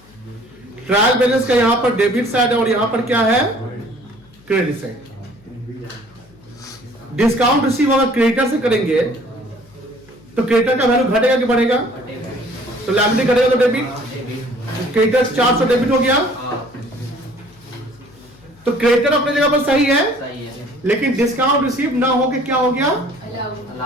ट्रायल बैलेंस का यहां पर डेबिट साइड है और यहां पर क्या है? Credit side. डिस्काउंट रिसीव होगा क्रेडिटर से करेंगे, तो क्रेडिटर का वैल्यू घटेगा कि बढ़ेगा? तो लायबिलिटी घटेगा तो डेबिट। क्रेडिटर 400 डेबिट हो गया, तो क्रेडिटर अपने जगह पर सही है, लेकिन डिस्काउंट रिसीव ना होके क्या हो गया?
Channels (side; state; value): left; noise; hum, 27 dB below the sound